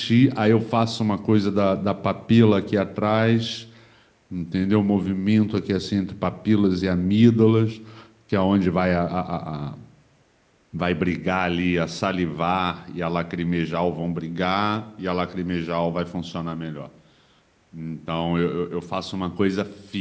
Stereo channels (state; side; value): identical; both; correlation 1.00